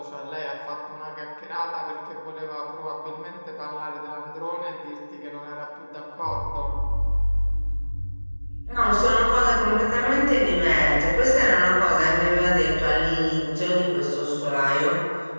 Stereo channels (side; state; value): both; inverted; correlation -1.00